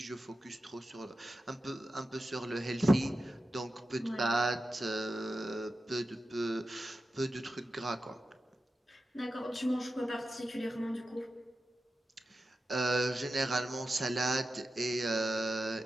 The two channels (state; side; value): normal; both; correlation 0.92